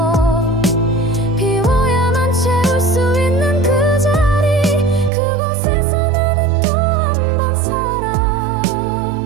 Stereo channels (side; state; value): left; drops out; at 5.1 s